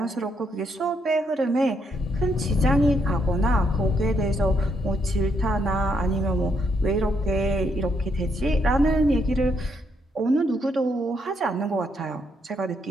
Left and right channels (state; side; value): normal; both; correlation 0.75